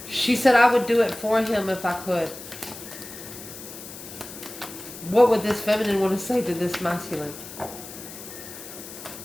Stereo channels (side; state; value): left; noise; hiss, 13 dB below the sound